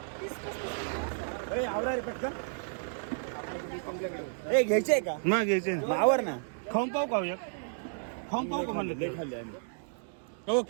ए घ्यायचे का? मग घ्यायचे आवर ना. खाऊन पाहू का? एक खाऊन पाहू का म्हणलं? खाल्ले आम्ही. हो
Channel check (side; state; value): left; silent; digital silence